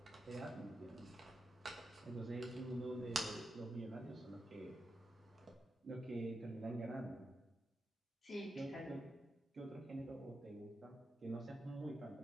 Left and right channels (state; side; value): normal; both; correlation 0.87